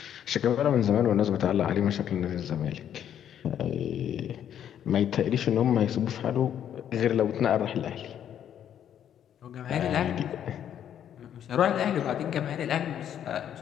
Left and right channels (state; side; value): quieter; right; 9.8 dB